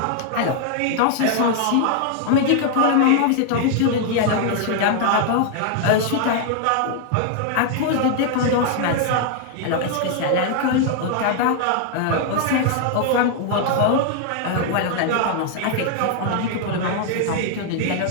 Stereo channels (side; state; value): both; different; correlation 0.00